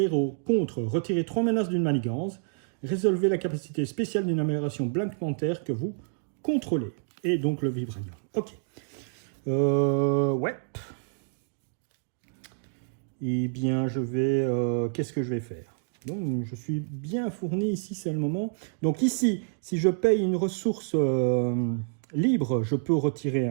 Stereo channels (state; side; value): silent; left; digital silence